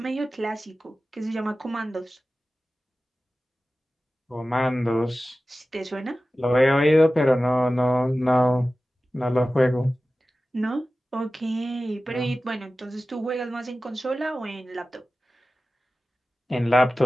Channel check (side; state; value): both; normal; correlation 0.95